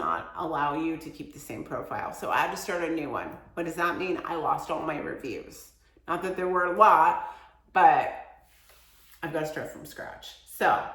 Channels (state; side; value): identical; both; correlation 1.00